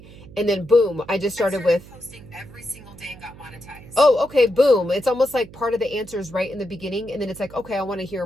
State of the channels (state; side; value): noise; right; hum, 19 dB below the sound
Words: And then boom, I just started with posting every single day and got monetized. Oh, okay. Boom. It's almost like part of the answers right in the beginning. And then it's like, okay, I want to